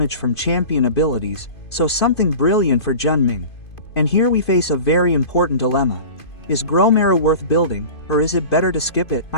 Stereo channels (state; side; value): late; right; 2.5 ms